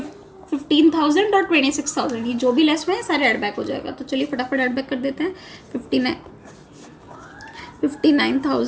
और 26,000, ये जो भी लेस हुए हैं सारे ऐड बैक हो जाएगा। तो चलिए फटाफट ऐड बैक कर देते हैं।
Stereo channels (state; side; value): identical; both; correlation 1.00